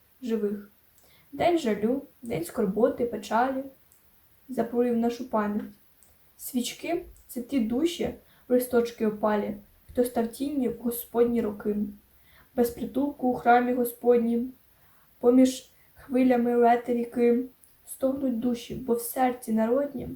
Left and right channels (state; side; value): identical; both; correlation 1.00